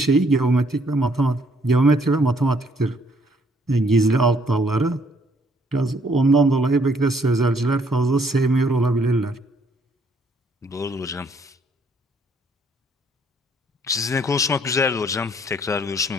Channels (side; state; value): both; normal; correlation 0.66